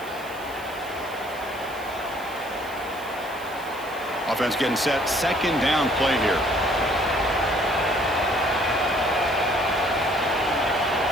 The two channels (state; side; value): noise; right; hiss, 20 dB below the sound